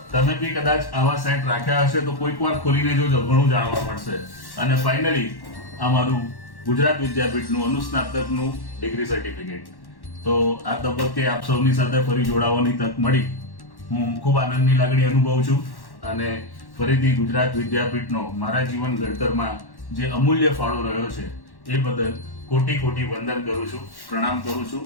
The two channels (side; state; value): right; late; 1.1 ms